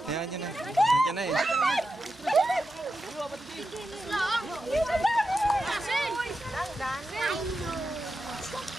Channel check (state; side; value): normal; both; correlation 0.89